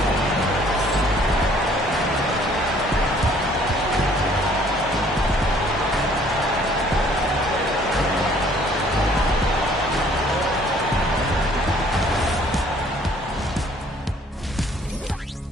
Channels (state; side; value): normal; both; correlation 0.59